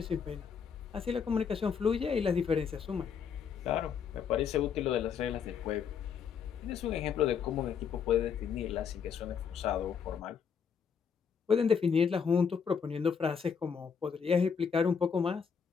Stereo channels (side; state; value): right; quieter; 6.7 dB